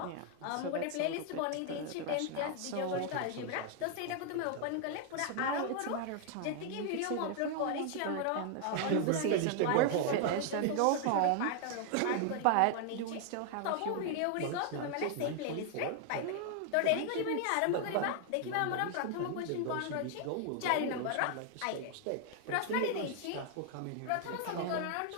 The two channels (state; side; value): different; both; correlation 0.00